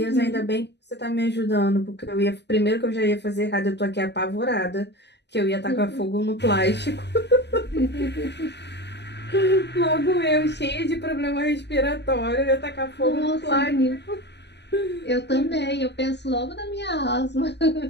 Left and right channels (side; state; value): right; late; 0.50 ms